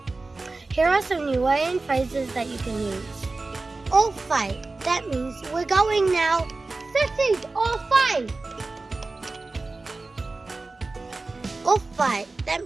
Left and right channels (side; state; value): left; quieter; 3.5 dB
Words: Here are some Niuean phrases that you can use. All fight. That means we're going now. City, all fight. All fight. That